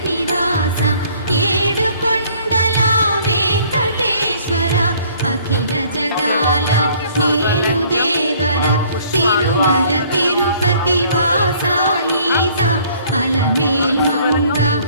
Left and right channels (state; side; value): inverted; both; correlation -0.58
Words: నివాస ఏడుకొండల వెంకటేశ్వర అఖిల జగాల నేలు దేవర తిరుమల తిరుపతి వాస ఈస అలమేల్ మంగ